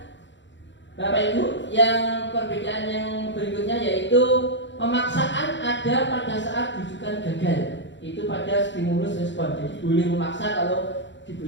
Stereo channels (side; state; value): right; late; 0.53 ms